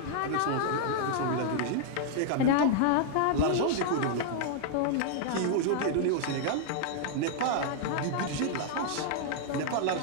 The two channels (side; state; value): both; different; correlation -0.01